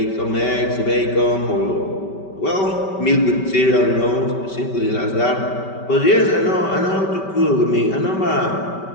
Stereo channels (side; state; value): right; late; 5.2 ms